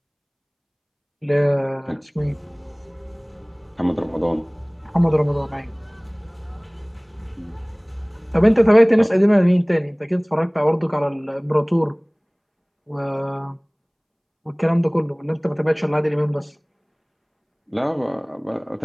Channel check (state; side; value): identical; both; correlation 1.00